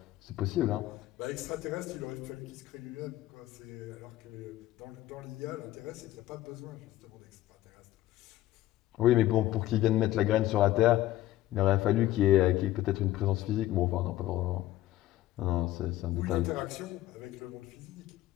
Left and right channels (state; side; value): quieter; right; 15.0 dB